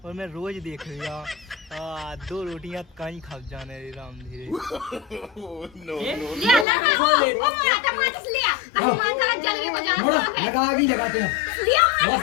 और मैं रोज देख रहा दो रोटियां कहीं खा जाने रे राम धीरे। ले लगा ओ मोड़ा टमाटर से लिया हनुमान सारा जलवे को जाना मोड़ा लगा आगे लगाते हैं लिया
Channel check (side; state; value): right; drops out; at 6.7 s